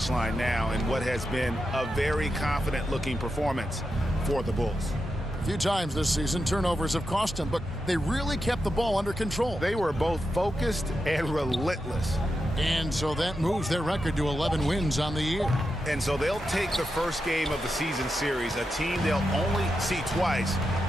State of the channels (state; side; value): normal; both; correlation 0.88